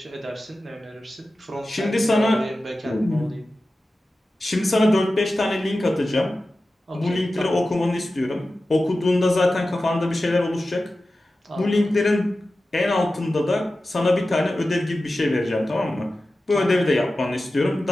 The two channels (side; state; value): both; normal; correlation 0.94